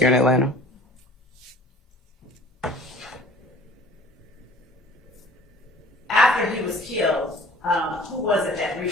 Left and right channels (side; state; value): both; normal; correlation 0.48